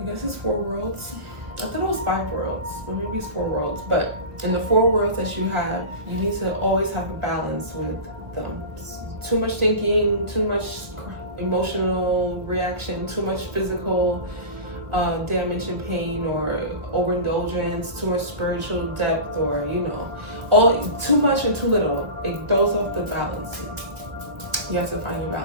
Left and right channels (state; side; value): late; left; 1.2 ms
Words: guess it's 4 worlds. I thought it was 5 worlds, or maybe it's 4 worlds. But in the 4 worlds that you have, you need to always have a balance with them. Too much thinking, too much emotional reaction, too much physical damage and pain, or overindulgence, too much spiritual depth, or all too much and too little. It throws off the balance. You have to find your